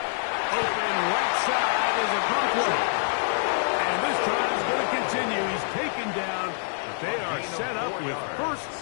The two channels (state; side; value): silent; right; digital silence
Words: Open right side is a Conklin. And this drive is going to continue. He's taken down, but they are set up with